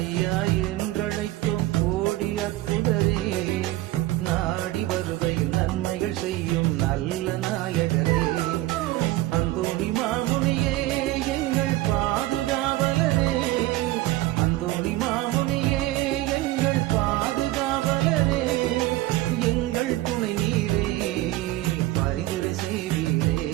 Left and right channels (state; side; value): quieter; left; 17.0 dB